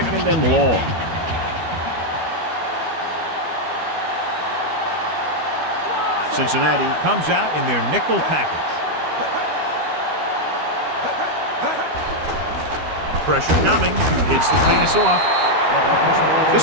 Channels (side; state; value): left; late; 12 ms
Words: and long. Cincinnati comes out in their nickel package. Pressure coming. Gets the pass off.